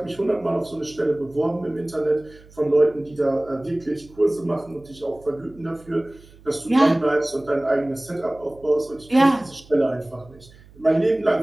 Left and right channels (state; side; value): noise; right; hum, 24 dB below the sound